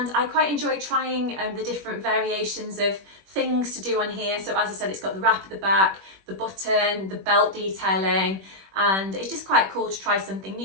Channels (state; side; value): late; left; 21 ms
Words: I quite enjoy trying the different variations of things to do on here. So as I said, it's got the wrap at the back, the button, the belt detailing, and it's just quite cool to try something